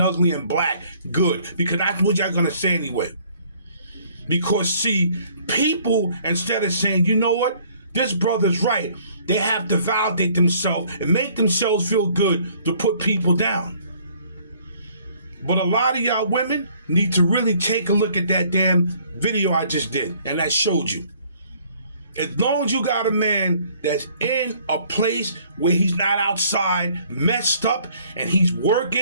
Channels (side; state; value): both; inverted; correlation -0.60